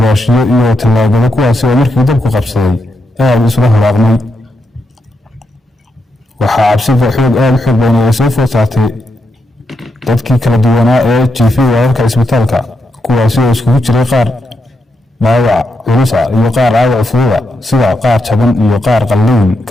iyo talaagada kuwaasi oo markii dabku qabsaday aad isla haraaqmay waxaa cabsida aad u xoog badan ay soo food saartay dadkii kala duwanaa ee jiifay wararka isbitaalka kuwaasi oo iskugu jiray qaar dhaawac culus ah iyo qaar dhaawac fudud ah sida qaar jaban iyo qaar qalliin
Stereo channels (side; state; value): both; normal; correlation 0.83